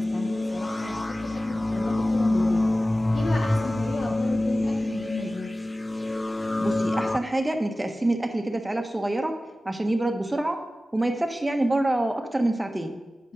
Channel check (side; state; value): both; normal; correlation 0.96